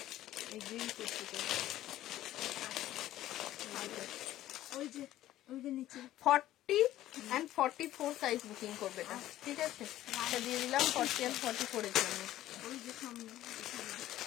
এই গ্রিন কুর্তিটা 40 and 44 সাইজ বুকিং করবে এটা। ঠিক আছে, এটা দিয়ে দিলাম 40 and 44 এর জন্য।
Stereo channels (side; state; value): right; quieter; 14.0 dB